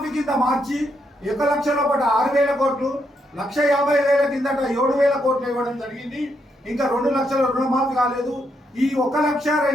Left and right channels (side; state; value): both; normal; correlation 0.78